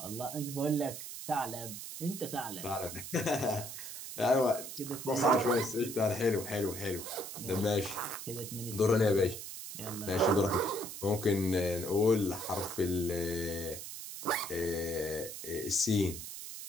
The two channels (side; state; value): right; noise; hiss, 9 dB below the sound